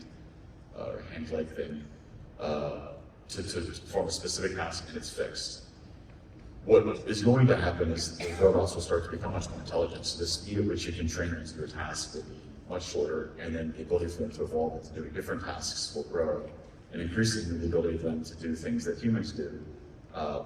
leg thing to perform a specific task, and it's fixed. What is going to happen is the robots will start to become much more intelligent. So the speed at which you can train them to do a task will be much shorter, and then the ability for them to evolve into doing different tasks will grow, and increasingly the ability for them to do things that humans do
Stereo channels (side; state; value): both; identical; correlation 1.00